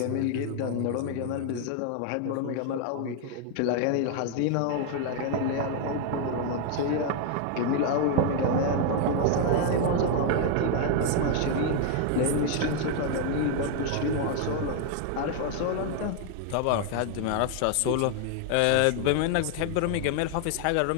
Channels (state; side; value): different; both; correlation 0.00